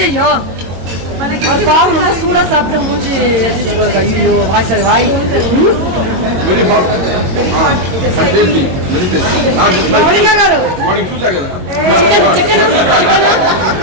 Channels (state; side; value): late; left; 22 ms